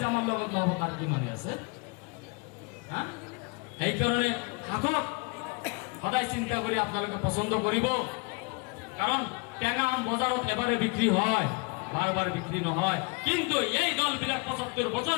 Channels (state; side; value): quieter; right; 30.3 dB